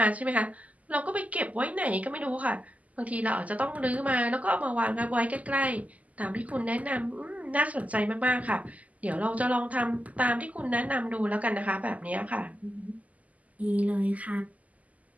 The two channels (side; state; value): left; late; 0.074 ms